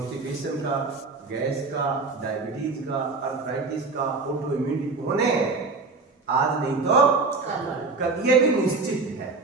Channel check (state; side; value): quieter; left; 4.0 dB